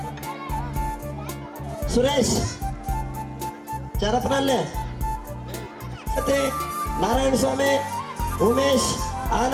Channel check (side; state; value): both; identical; correlation 1.00